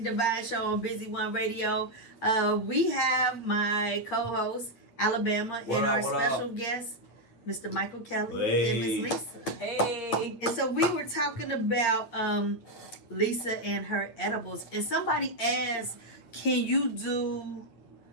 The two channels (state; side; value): late; right; 8.7 ms